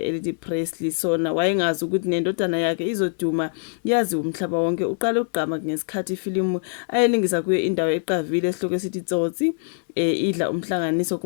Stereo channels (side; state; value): right; silent; digital silence